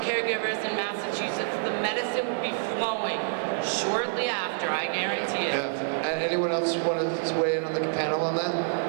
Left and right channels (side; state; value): left; silent; 60 dB below the other